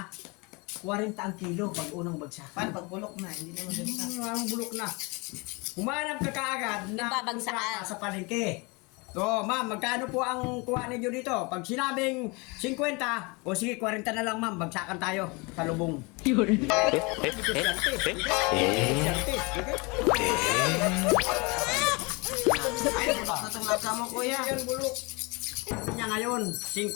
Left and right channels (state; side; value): quieter; right; 28.1 dB